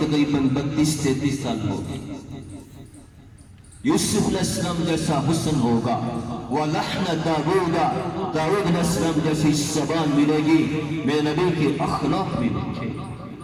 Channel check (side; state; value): both; identical; correlation 1.00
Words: 32-33 سال ہوگی. یوسف علیہ السلام جیسا حسن ہوگا, وَلَحْنَ دَاوُودَ, داؤد علیہ السلام جیسی زبان ملے گی. میرے نبی کے اخلاق ملیں گے,